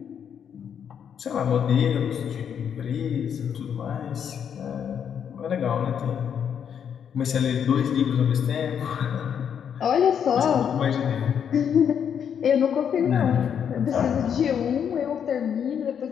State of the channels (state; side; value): quieter; right; 8.1 dB